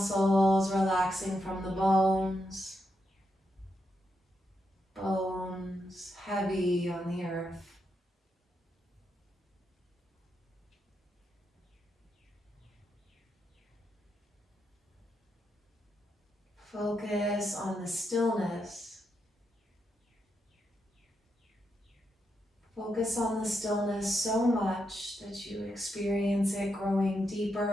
relaxing from the bones. Bones heavy on the earth. Focus on the stillness. Focus on the stillness so much that you experience it growing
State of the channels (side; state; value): both; normal; correlation 0.83